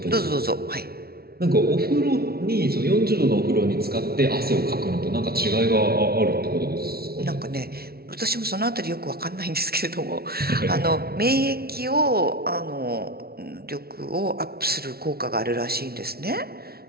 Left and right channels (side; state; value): left; late; 0.45 ms